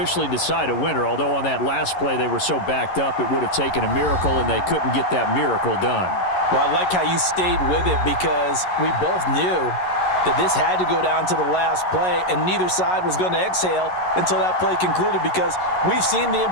decide a winner, although on that last play they were so backed up it would have taken a miracle, and they couldn't get that miracle done. Well, I like how you stayed with it because we both knew that this had to go down to the last play, and neither side was going to exhale until that play concluded because we've seen the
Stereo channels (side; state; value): right; late; 11 ms